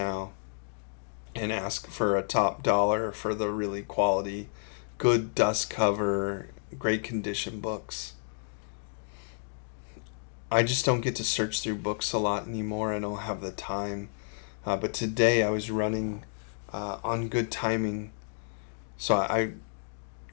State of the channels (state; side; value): silent; right; digital silence